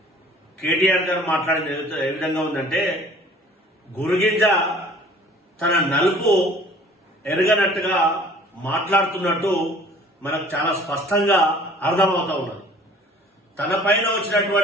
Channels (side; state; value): both; normal; correlation 0.50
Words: కేటీఆర్ గారు మాట్లాడిన ఏ విధంగా ఉందంటే, గురుగింజ తన నలుపు ఎరగనట్టుగా మాట్లాడుతున్నట్టు మనకు చాలా స్పష్టంగా అర్థమవుతా ఉన్నది. తన పైన